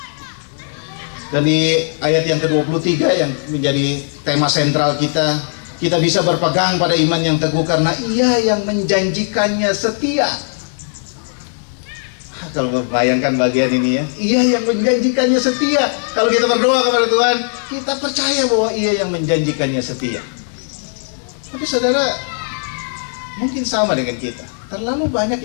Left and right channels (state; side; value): silent; right; 64 dB below the other